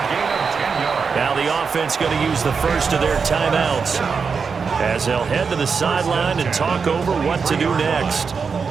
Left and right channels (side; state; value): left; quieter; 5.5 dB